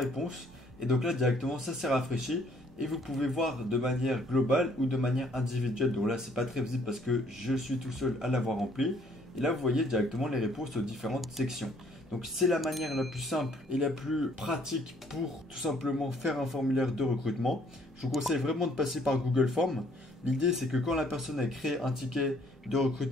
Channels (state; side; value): normal; both; correlation 0.63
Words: et donc là directement ça s'est rafraîchi et vous pouvez voir de manière globale ou de manière individuelle. Donc là c'est pas très visible parce que je suis tout seul à l'avoir rempli. Et là vous voyez directement les réponses aux différentes sections. Donc c'est la manière la plus simple et la plus pratique pour tout simplement faire un formulaire de recrutement. Je vous conseille vraiment de passer par Google Forms. L'idée c'est que quand la personne a créé un ticket de